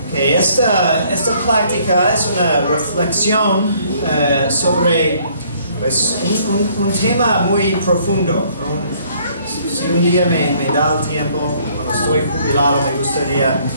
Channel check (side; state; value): both; inverted; correlation -0.62